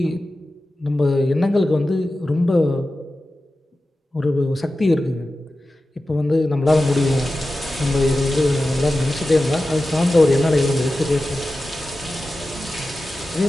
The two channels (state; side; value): normal; both; correlation 0.94